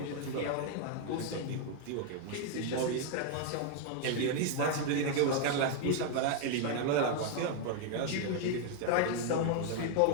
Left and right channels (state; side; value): different; both; correlation 0.00